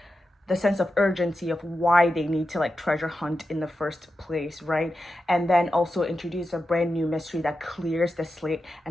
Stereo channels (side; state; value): both; normal; correlation 0.90